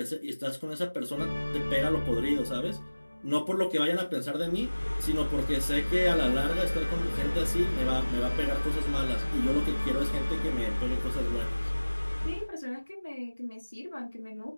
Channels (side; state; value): both; inverted; correlation -1.00